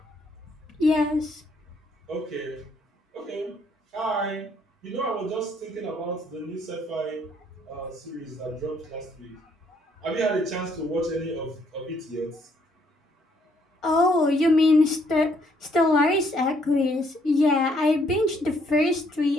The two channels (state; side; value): normal; both; correlation 0.68